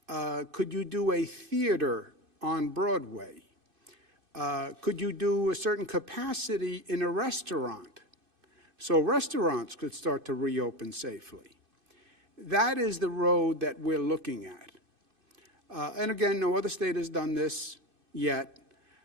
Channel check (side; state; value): left; late; 2.5 ms